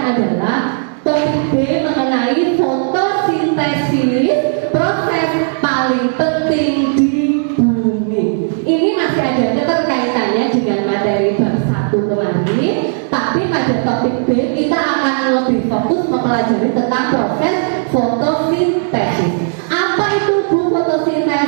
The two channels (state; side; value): silent; left; digital silence